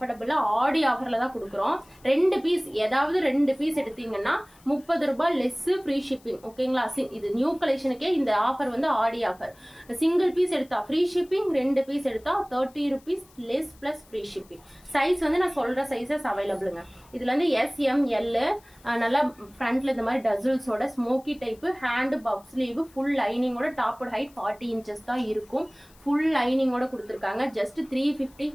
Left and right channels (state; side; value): noise; left; hiss, 28 dB below the sound